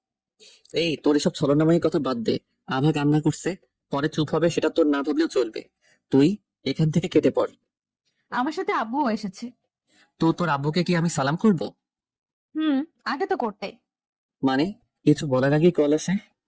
এই তোর এসব ছলনাময়ী কথা বাদ দে। আভা কান্না করছে, পরে চুপ হবে সেটা তোর না ভাবলেও চলবে। তুই এখান থেকে কেটে পড়। আমার সাথে আব্বুও এসেছে। তো তোর আব্বুকে কি আমি সালাম করব? আগে তো করতে। মানে কিছু বলার আগেই কল আসে।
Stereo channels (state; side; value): identical; both; correlation 1.00